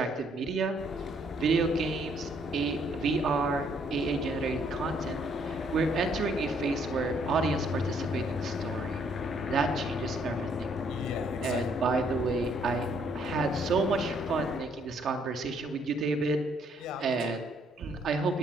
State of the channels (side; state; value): both; normal; correlation 0.68